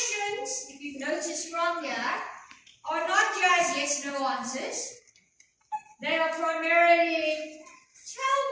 if you've noticed from here, are not just yes-no answers. They are primarily, tell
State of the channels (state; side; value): identical; both; correlation 1.00